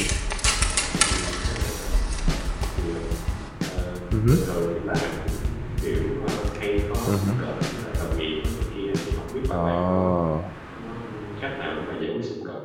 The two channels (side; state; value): both; identical; correlation 1.00